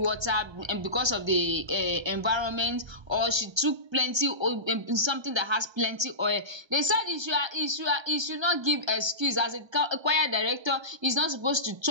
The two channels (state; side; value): late; left; 1.3 ms